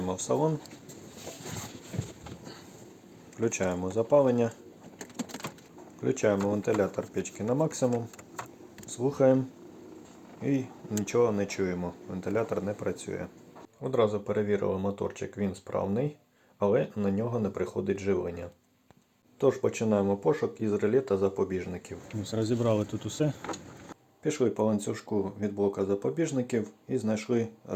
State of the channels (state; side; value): identical; both; correlation 1.00